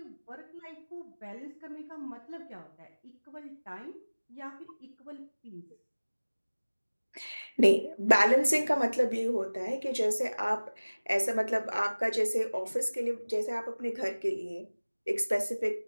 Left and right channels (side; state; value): both; inverted; correlation -1.00